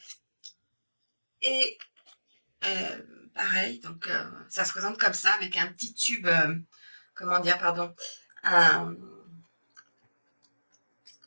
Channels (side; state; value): both; inverted; correlation -1.00